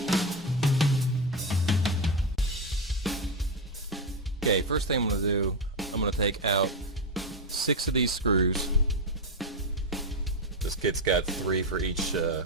Okay, first thing I'm going to do, I'm going to take out 6 of these screws. This kit's got 3 for each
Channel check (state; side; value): normal; both; correlation 0.09